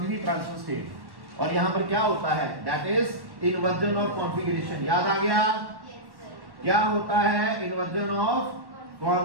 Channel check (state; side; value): late; left; 1.1 ms